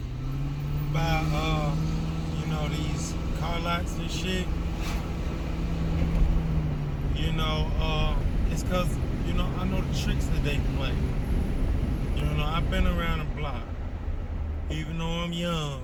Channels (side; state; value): both; identical; correlation 1.00